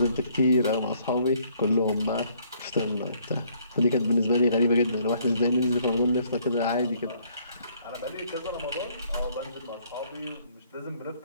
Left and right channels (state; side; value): inverted; both; correlation -0.64